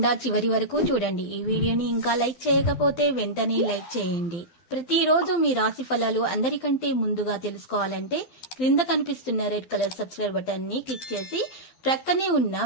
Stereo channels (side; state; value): right; late; 12 ms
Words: చివరి వరకు చూడండి. ఈ వీడియోని ఇంకా లైక్ చేయకపోతే వెంటనే లైక్ చేయండి. ప్రతిరోజు మీ రాశి ఫలాలు అందరికంటే ముందుగా తెలుసుకోవాలంటే క్రింద కనిపిస్తున్న రెడ్ కలర్ సబ్స్క్రైబ్ బటన్ ని క్లిక్ చేసి ప్రక్కనే ఉన్న